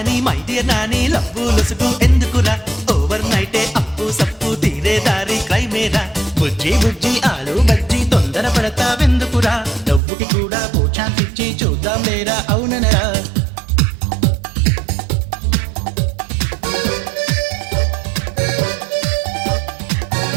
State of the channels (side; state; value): left; drops out; at 10.0 s